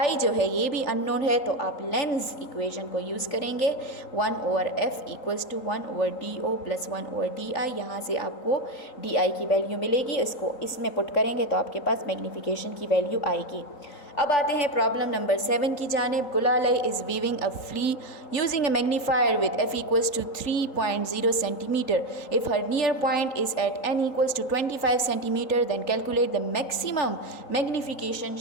जो है ये भी अननोन है, तो आप लेंस इक्वेशन को यूज़ करेंगे 1/f = 1/do + 1/di। यहाँ से आपको di की वैल्यू मिलेगी, इसको इसमें पुट करेंगे तो आपके पास मैग्नीफिकेशन की वैल्यू आएगी। अब आते हैं प्रॉब्लम नंबर 7 की जानिब। Gulalai is viewing a flea using a magnifier with f = 3.0 centimetre. If her near point is at n = 25 centimetre then calculate the maximum magnification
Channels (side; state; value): right; late; 3.8 ms